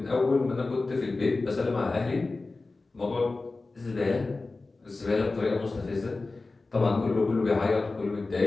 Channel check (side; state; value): right; quieter; 3.5 dB